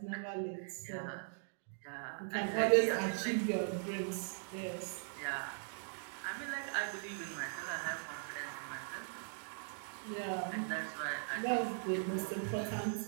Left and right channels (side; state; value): left; silent; digital silence